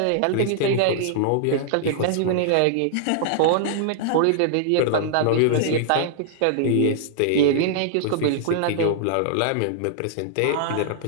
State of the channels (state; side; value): different; both; correlation -0.01